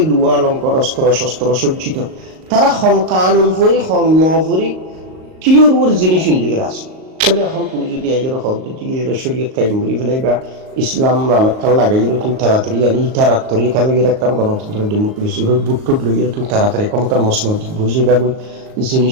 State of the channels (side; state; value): left; late; 38 ms